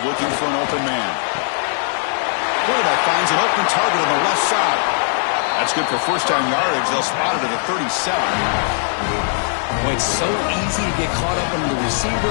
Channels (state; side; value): silent; right; digital silence